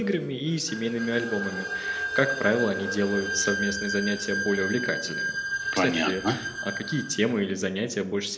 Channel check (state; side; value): identical; both; correlation 1.00